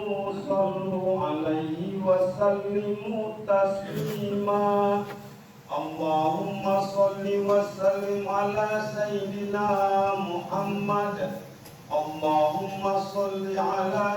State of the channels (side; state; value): both; identical; correlation 1.00